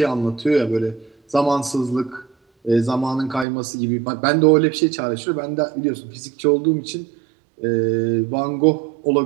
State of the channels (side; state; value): left; drops out; at 3.5 s